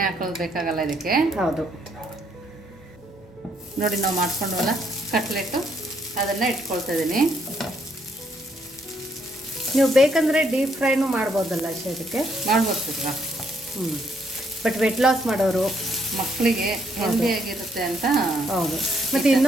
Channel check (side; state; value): both; normal; correlation 0.71